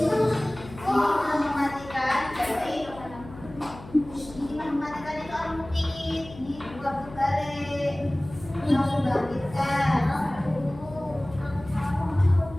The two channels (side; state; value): left; noise; hum, 17 dB below the sound